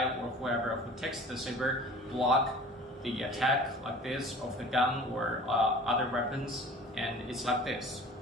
or whoever who takes the saber block the attack like this of the gun or other weapons, and it's like this.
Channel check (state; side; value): normal; both; correlation 0.44